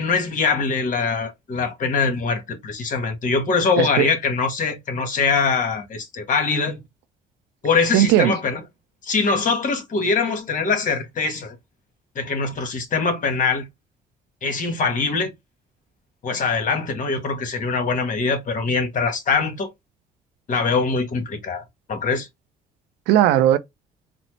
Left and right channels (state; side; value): normal; both; correlation 0.08